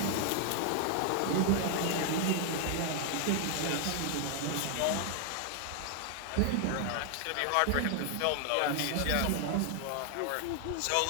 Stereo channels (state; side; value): different; both; correlation 0.00